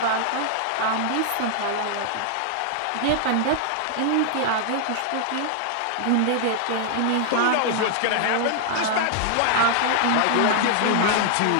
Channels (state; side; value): different; both; correlation -0.01